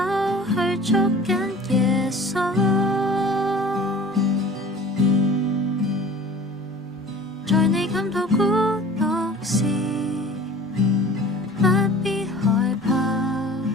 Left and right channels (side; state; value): both; normal; correlation 0.44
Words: 去捉緊耶穌。在你感到孤獨時，不必害怕，